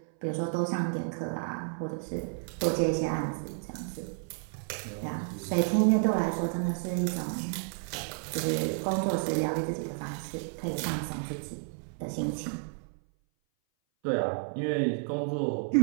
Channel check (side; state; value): left; silent; 57 dB below the other